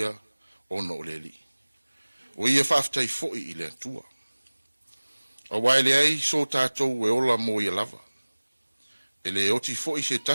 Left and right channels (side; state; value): both; inverted; correlation -1.00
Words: ono o le li. O ia whaafitai fo I le atua. A wai le ai so tātou e ola mo ia lava. E le oti fo I se